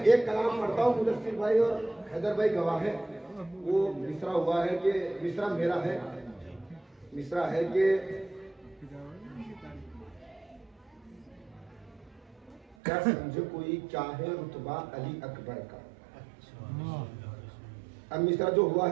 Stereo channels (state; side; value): drops out; left; at 12.8 s